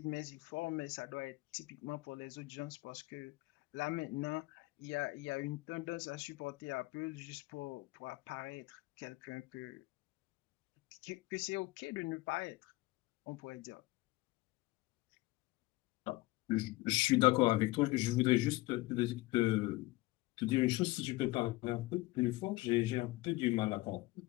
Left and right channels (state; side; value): quieter; right; 20.3 dB